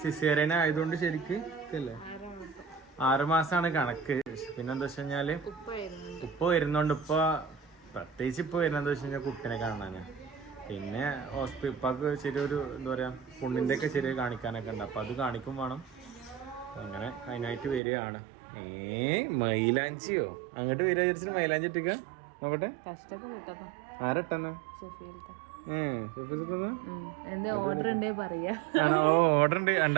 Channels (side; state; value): left; drops out; at 17.8 s